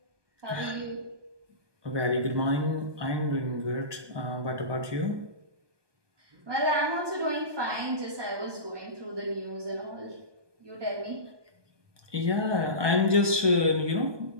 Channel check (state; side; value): late; left; 1.2 ms